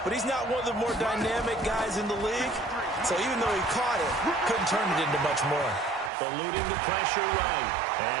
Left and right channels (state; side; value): drops out; left; at 6.1 s